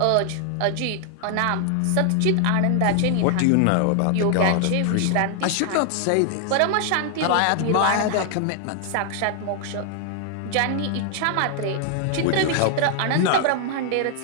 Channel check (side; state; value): both; different; correlation 0.00